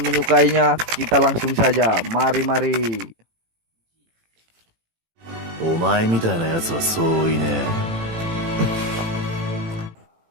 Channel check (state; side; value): late; left; 18 ms